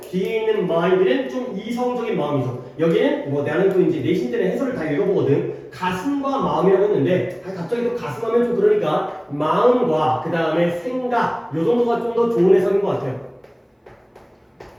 뒤에 있는 mind는 좀 이성적인 마음이죠. 여기는 나는 또 이제 내신들의 해설을 다 읽어보거든. 가슴과 마음이라고 했는데 갑자기 또 가슴 하면 좀 그러니까 마음과 그 다음에 생각 요 정도가 좀 더 좋은 해석인 것 같아요.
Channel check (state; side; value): identical; both; correlation 1.00